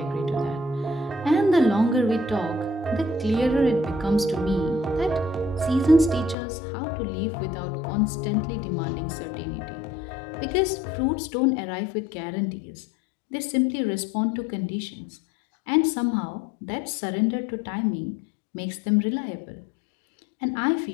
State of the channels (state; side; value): drops out; right; at 6.4 s